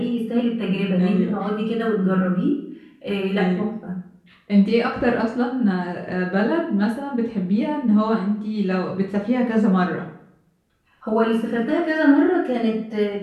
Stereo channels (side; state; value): both; identical; correlation 1.00